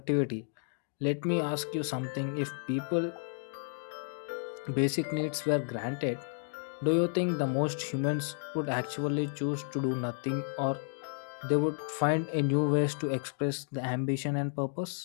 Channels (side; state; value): right; silent; digital silence